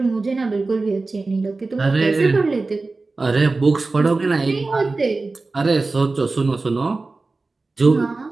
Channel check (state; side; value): quieter; left; 3.6 dB